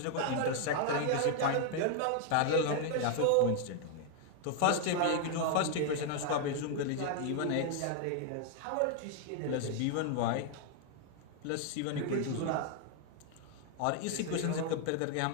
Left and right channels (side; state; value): both; different; correlation 0.00